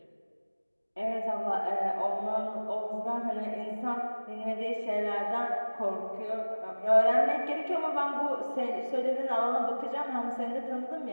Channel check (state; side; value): inverted; both; correlation -1.00